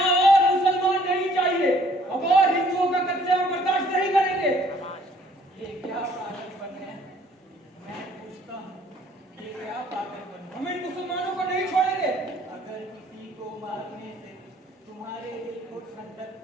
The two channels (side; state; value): both; normal; correlation 0.60